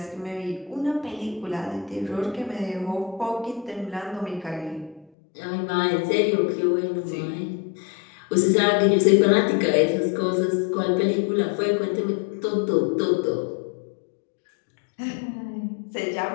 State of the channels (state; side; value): drops out; right; at 5.1 s